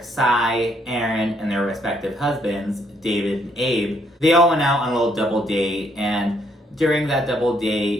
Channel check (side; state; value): both; normal; correlation 0.70